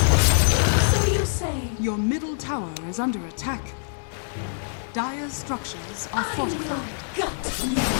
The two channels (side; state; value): right; silent; 62 dB below the other